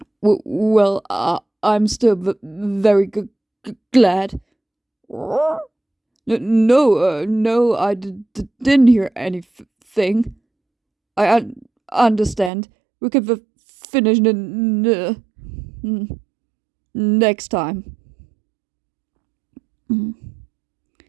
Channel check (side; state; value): left; drops out; at 12.5 s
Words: Well, I'm still very glad. No, I didn't hear anything. I understand. We can finish next time. Mm.